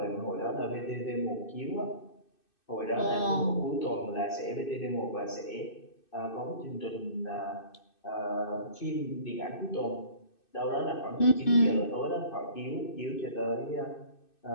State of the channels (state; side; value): late; right; 2.6 ms